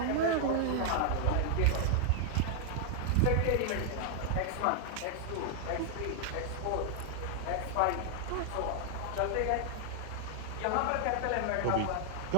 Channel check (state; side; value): different; both; correlation -0.01